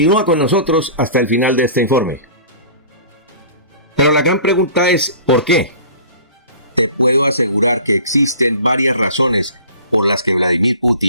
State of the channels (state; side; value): inverted; both; correlation -0.43